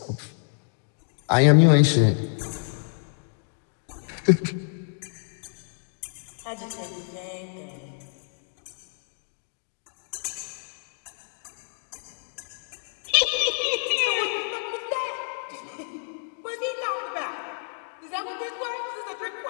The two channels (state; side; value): silent; right; digital silence